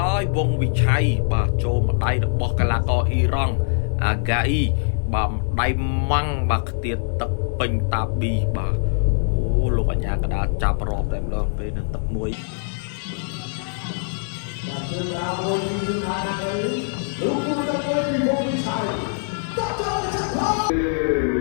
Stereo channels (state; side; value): silent; right; 60 dB below the other